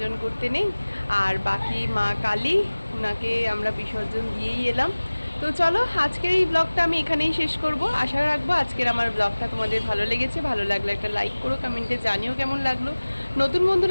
করতে নেই। আর বাকি মা কালী, ওনাকে আমরা বিসর্জন দিয়েই এলাম। তো চলো, আজকের এই ব্লগটা আমি এখানেই শেষ করব। আশা রাখবো আজকের আমার ব্লগটা তোমাদের ভালো লেগেছে। ভালো লাগলে একটা লাইক করো, কমেন্টে জানিও কেমন লাগলো। নতুন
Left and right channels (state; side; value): inverted; both; correlation -1.00